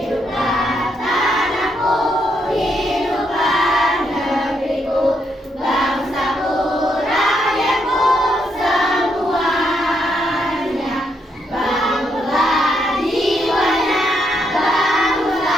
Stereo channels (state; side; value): normal; both; correlation 0.77